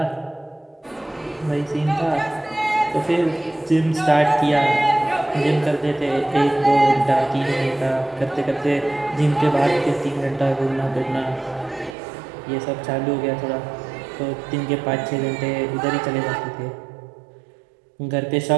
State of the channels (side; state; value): left; drops out; at 12.0 s